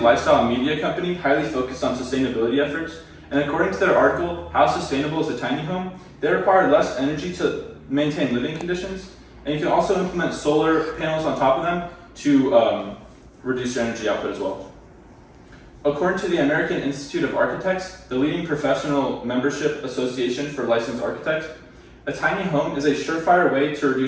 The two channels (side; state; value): both; identical; correlation 1.00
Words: media company highly focused on sustainability efforts, and according to their article, How Sustainable is a Tiny Home?, they require less energy to maintain living conditions, and you can also implement solar panels on top of them to reduce your energy output as well. According to the American Institute of Architects, the leading professional membership association for licensed architects, a tiny home is a surefire way to